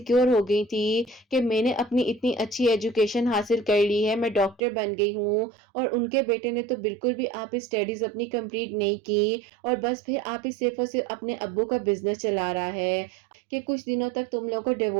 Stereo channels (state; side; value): drops out; left; at 4.6 s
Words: ہو گئی تھی کہ میں نے اپنی اتنی اچھی ایجوکیشن حاصل کر لی ہے، میں ڈاکٹر بن گئی ہوں، اور ان کے بیٹے نے تو بالکل بھی آپ اسٹڈیز اپنی کمپلیٹ نہیں کی، اور بس پھر آپ ہی صرف اور صرف اپنے ابو کا بزنس چلا رہا ہے کہ کچھ دنوں تک تم لوگوں کو